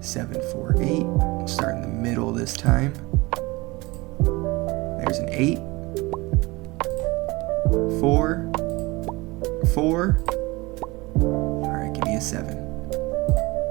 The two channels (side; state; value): left; quieter; 22.9 dB